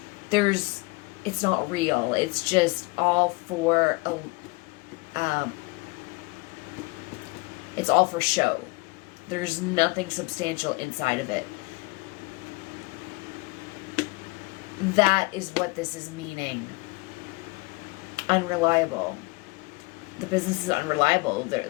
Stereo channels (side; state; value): right; quieter; 26.1 dB